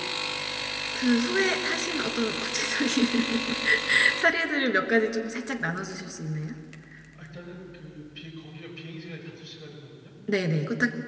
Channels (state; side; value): identical; both; correlation 1.00